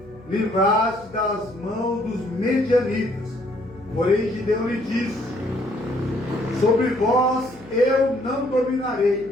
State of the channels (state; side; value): noise; left; hum, 23 dB below the sound